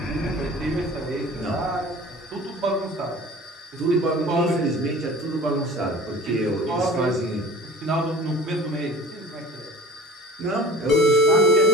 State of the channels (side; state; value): both; normal; correlation 0.42